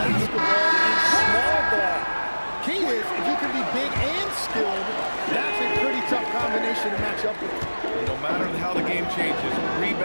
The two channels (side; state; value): both; inverted; correlation -1.00